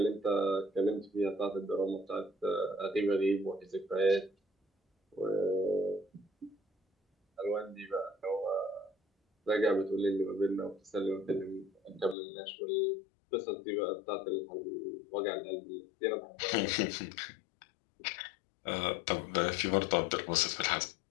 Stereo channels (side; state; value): right; drops out; at 12.2 s